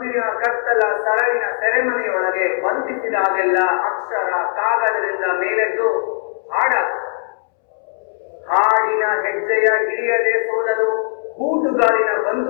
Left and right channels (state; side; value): silent; right; 66 dB below the other